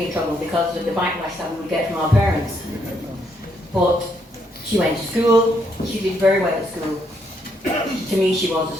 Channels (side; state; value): both; normal; correlation 0.74